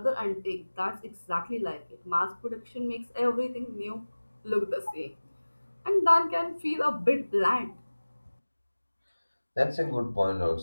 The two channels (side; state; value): both; inverted; correlation -1.00